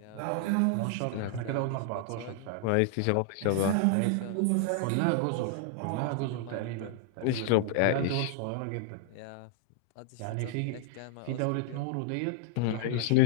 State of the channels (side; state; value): both; different; correlation -0.01